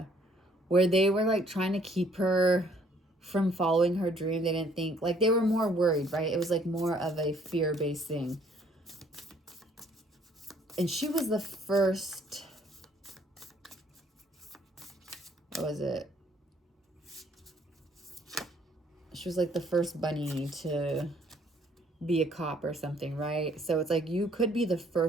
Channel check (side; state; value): both; normal; correlation 0.63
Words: where they were like trying to keep her from following her dream. They didn't think, like they were more worried, right? It was like more of a fear-based thing. And she was the first, what was it? She was like the first bunny to be a cop or something, right? So it's like you could be the